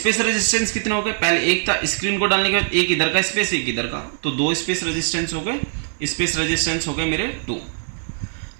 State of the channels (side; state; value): left; silent; digital silence